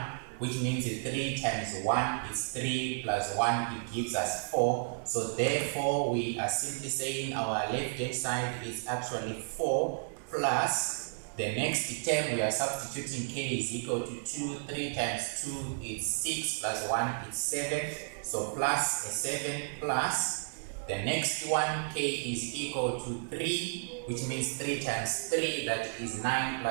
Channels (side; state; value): left; silent; digital silence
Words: which means 3 times 1 is 3 plus 1, it gives us 4. So therefore, we are simply saying our left-hand side is actually 4 plus the next term, we are substituting k is equal to 2. 3 times 2 is 6 plus 1 is 7. So plus a 7 plus the next one, k is equal to 3, which means 3 times 3, that is 9